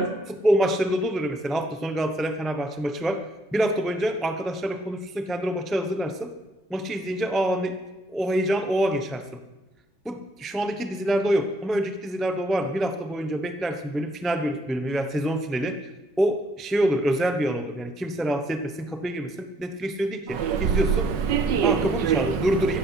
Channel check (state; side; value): normal; both; correlation 0.67